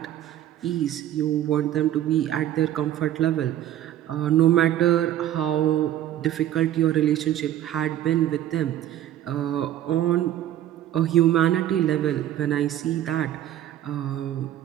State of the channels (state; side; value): quieter; left; 12.2 dB